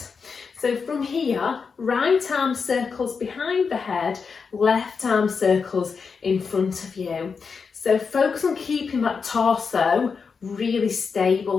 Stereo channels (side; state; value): right; quieter; 5.5 dB